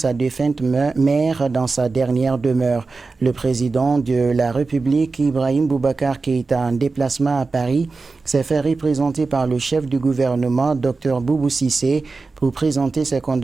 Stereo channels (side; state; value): left; quieter; 4.0 dB